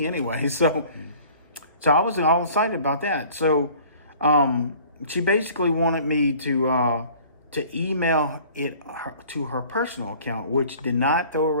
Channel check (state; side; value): inverted; both; correlation -0.49